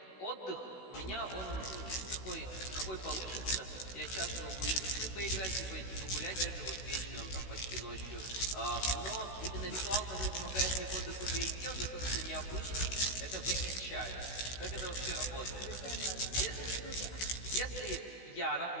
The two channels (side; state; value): right; late; 16 ms